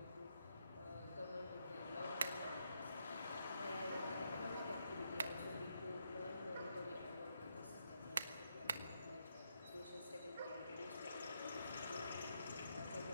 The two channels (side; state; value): both; inverted; correlation -0.79